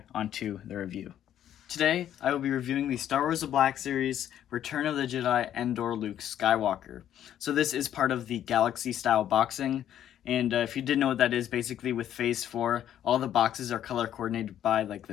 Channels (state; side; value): quieter; right; 10.8 dB